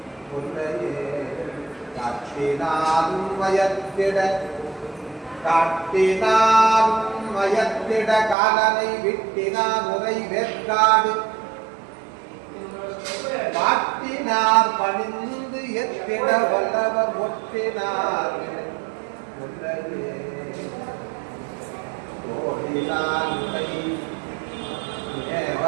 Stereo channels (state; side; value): drops out; left; at 8.3 s